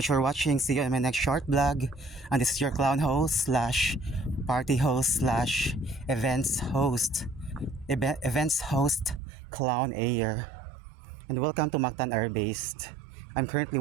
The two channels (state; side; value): drops out; left; at 9.2 s